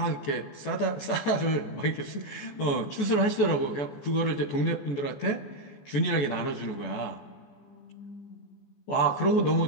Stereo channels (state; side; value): late; right; 14 ms